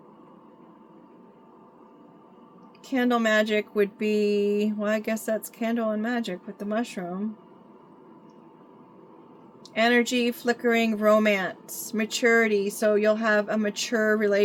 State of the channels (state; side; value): identical; both; correlation 1.00